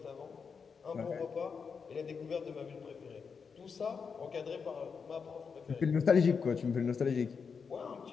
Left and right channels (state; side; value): quieter; right; 5.8 dB